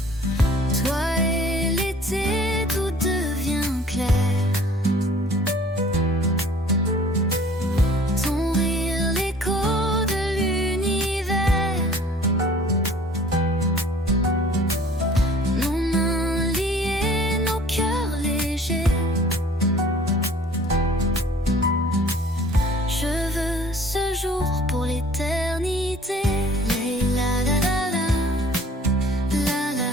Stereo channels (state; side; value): normal; both; correlation 0.51